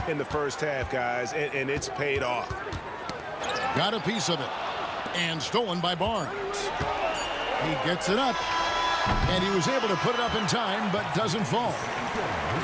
in the first half, guys, and it's paid off. Got a piece of it. And stolen by Barnes. He gets it up. And he was able to put it up in time, but doesn't fall.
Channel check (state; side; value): identical; both; correlation 1.00